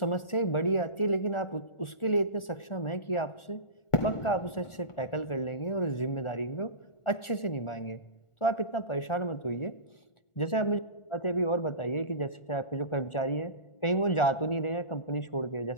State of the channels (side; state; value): right; late; 1.4 ms